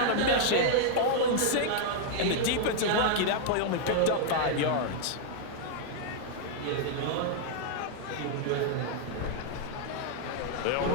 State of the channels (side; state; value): both; different; correlation 0.00